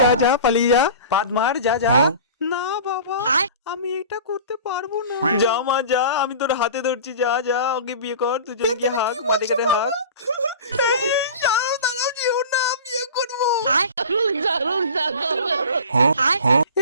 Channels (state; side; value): inverted; both; correlation -0.38